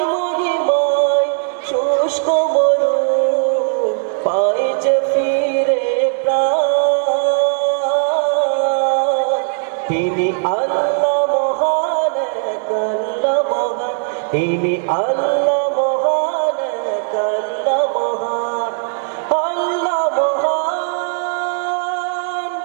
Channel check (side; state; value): left; silent; 63 dB below the other